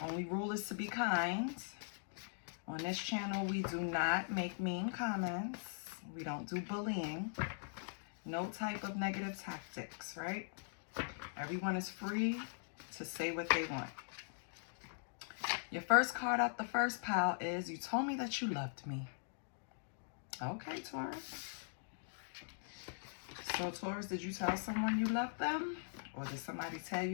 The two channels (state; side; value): silent; right; digital silence